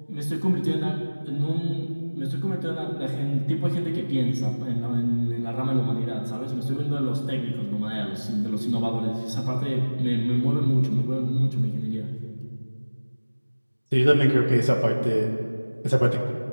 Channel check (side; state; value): both; inverted; correlation -1.00